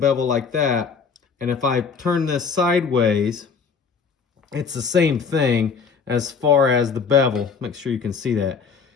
like that. And if I turn this sideways, it's the same thing as far as the bevel. Make sure you can see that.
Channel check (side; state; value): right; quieter; 5.7 dB